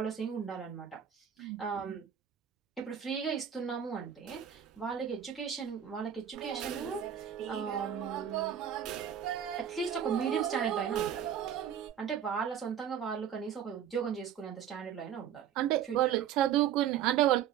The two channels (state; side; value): quieter; left; 9.2 dB